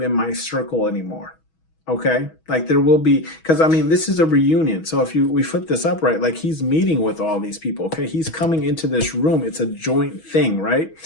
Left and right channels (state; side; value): late; right; 6.2 ms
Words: in my circle anymore. Okay, like there will be, because I mean this is a reunion. So if we flip this up, right, like he's meeting with all these people. Okay, he's coming into this room. It's a joint thing, right?